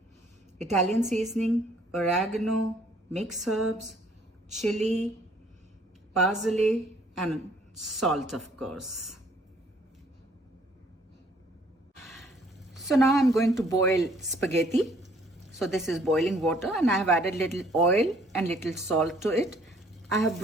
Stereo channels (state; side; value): normal; both; correlation 0.61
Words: Italian seasoning, oregano, mixed herbs, chili, parsley and salt of course. So now I'm going to boil spaghetti. So this is boiling water and I have added little oil and little salt to it. I have